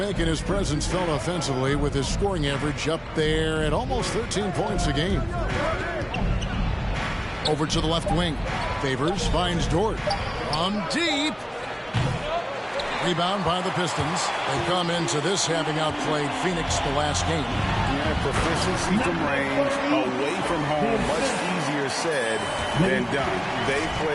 his presence felt offensively with his scoring average up there at almost 13 points a game. Over to the left wing. Favors finds Dort. On deep. Rebound by the Pistons. They come into this having outplayed Phoenix the last game. Yeah, proficiency from range, away from home, much easier said than done. They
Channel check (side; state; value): both; identical; correlation 1.00